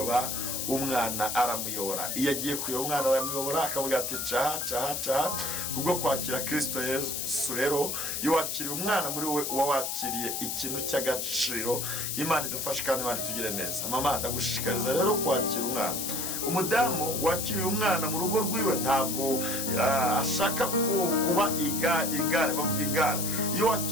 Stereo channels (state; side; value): noise; left; hiss, 2 dB below the sound